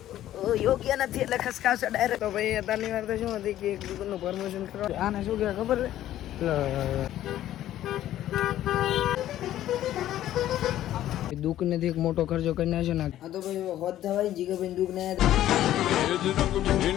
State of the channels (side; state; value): right; quieter; 12.9 dB